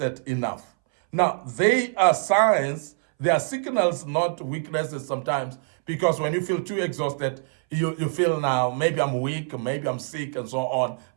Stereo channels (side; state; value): left; silent; 60 dB below the other